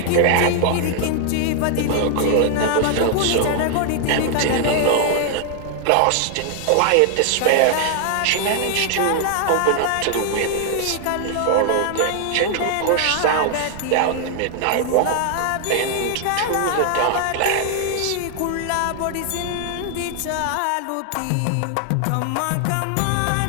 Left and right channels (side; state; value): both; different; correlation 0.00